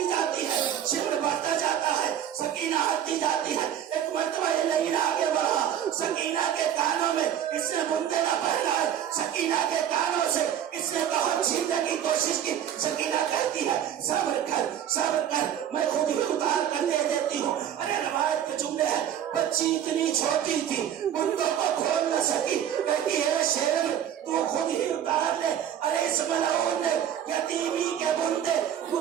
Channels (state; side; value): quieter; left; 9.9 dB